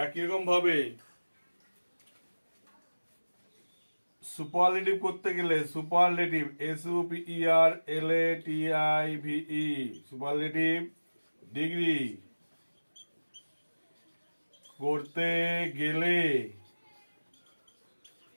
রকম ভাবে সুপারলেটিভ করতে গেলে সুপারলেটিভ SUPERLATIVE সুপারলেটিভ ডিগ্রি করতে গেলে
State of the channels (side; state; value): both; inverted; correlation -1.00